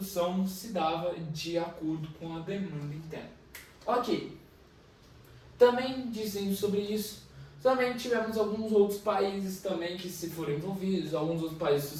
se dava de acordo com a demanda interna. Ok. Também dizendo sobre isso, Também tivemos alguns outros países também que se foram envolvidos, alguns outros países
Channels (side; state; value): both; identical; correlation 1.00